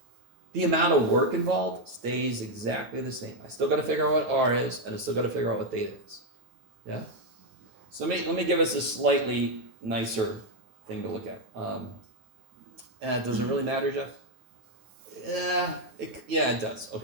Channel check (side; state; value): left; late; 9.1 ms